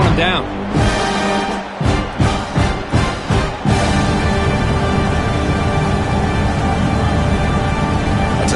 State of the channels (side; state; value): both; identical; correlation 1.00